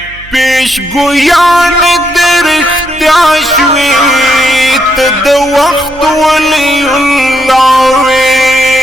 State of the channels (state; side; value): noise; right; hum, 21 dB below the sound